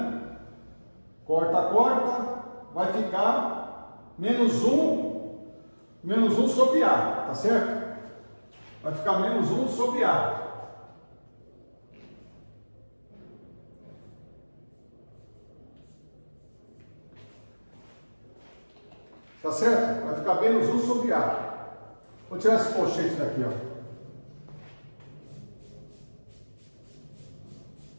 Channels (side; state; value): both; inverted; correlation -1.00